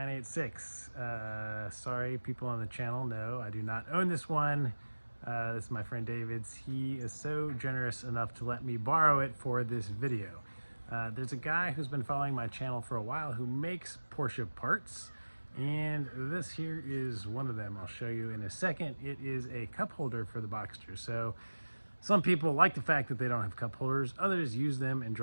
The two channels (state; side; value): inverted; both; correlation -1.00